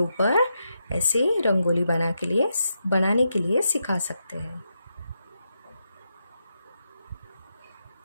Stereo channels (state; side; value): inverted; both; correlation -0.84